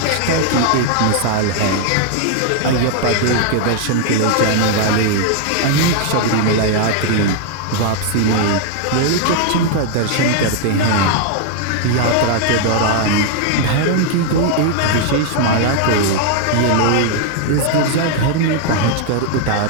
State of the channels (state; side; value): different; both; correlation 0.00